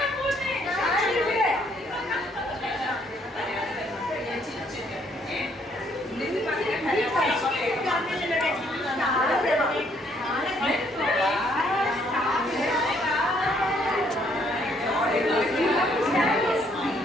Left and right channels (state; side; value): normal; both; correlation 0.67